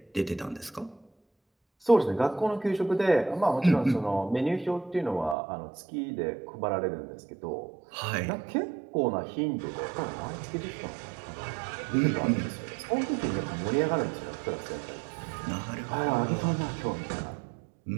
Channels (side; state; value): left; drops out; at 5.4 s